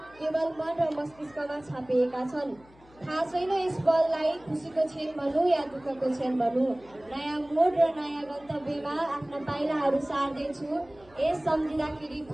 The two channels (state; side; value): noise; left; hum, 26 dB below the sound